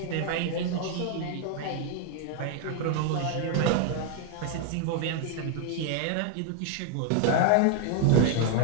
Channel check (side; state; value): both; different; correlation 0.00